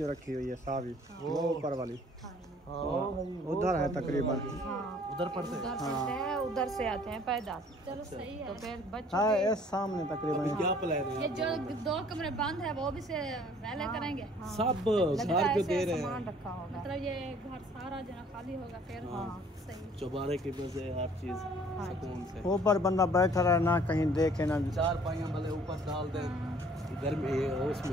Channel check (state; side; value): normal; both; correlation 0.55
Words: रखी हुई है सावी, वो ऊपर वाली उधर है तकरीबन। हाँ उधर पढ़ते हैं। उधर पढ़ते हैं, उधर से आते हैं पैदल। चलो सही तो है। फिर बच्चों हाँ के ये सामने तकरीबन। क्या प्लान है? ये जो 2 कमरे बंद है वो भी से पहले करेंगे, सब लगता है घर पे ऐसे दे रहे सामान हैं, रखा होगा। मतलब ये घर सारा जो है खाली होगा फिर। सही। चौबारे की वजह हर चीज सुकून से। ऊपर बंदा बैठा रहे ना, कहीं देखे ना। चार पाइयां भले ऊपर डाल दें, गर्मी